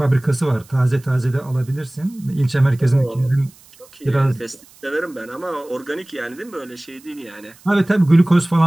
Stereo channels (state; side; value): noise; right; hiss, 26 dB below the sound